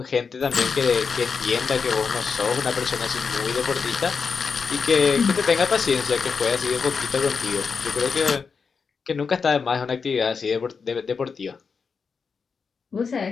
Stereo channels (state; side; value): quieter; right; 5.5 dB